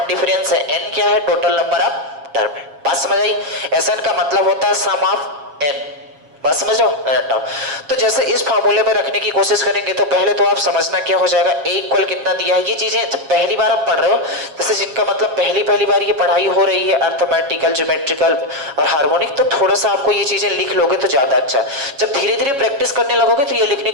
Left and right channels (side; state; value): left; late; 7.3 ms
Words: डिफरेंस है, n क्या है टोटल नंबर ऑफ टर्म है। बात समझ आई? SN का मतलब होता है सम ऑफ n। बात समझ लो। तो जैसे इस फार्मूले में रखने की कोशिश करेंगे तो पहले तो आप समझना क्या हो जाएगा, a इक्वल कितना दिया है। ये चीजें जब पहली बार आप पढ़ रहे हो, जैसे जिनका मतलब पहली बार ये पढ़ाई हो रही है अर्थमेटिकल, ज्योमेट्रिकल और हार्मोनिक, तो थोड़ा सा आपको ये चीजें लिख लोगे तो ज्यादा अच्छा। जब धीरे धीरे प्रैक्टिस करने लगोगे तो ये लिखने